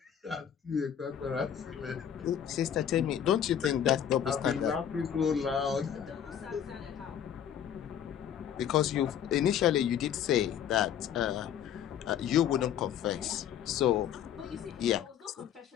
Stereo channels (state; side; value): quieter; right; 9.4 dB